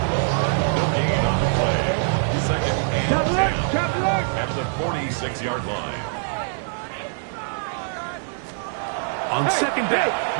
At the 46-yard line. On 2nd down,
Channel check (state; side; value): silent; left; digital silence